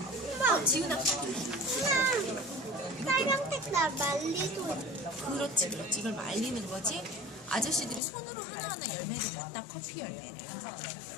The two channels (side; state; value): right; drops out; at 8.0 s